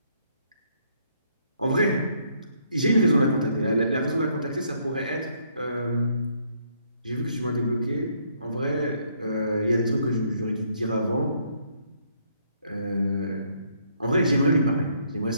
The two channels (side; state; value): both; inverted; correlation -0.70